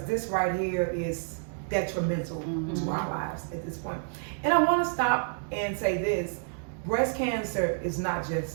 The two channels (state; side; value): silent; left; digital silence